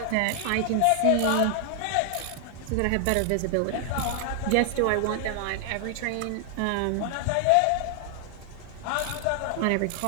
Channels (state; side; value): different; both; correlation 0.00